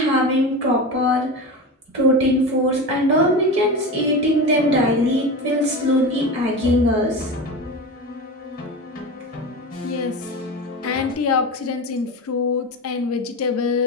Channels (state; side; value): normal; both; correlation 0.25